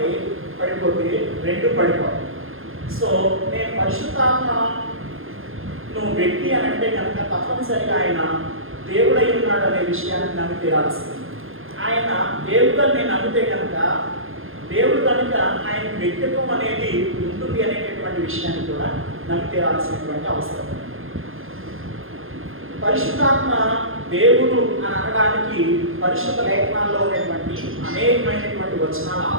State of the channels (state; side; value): late; left; 0.60 ms